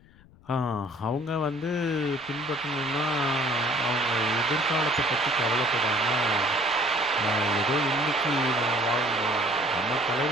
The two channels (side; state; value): left; noise; rumble, 26 dB below the sound